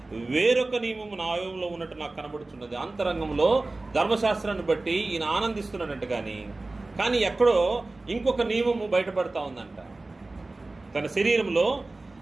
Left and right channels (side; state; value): left; quieter; 3.1 dB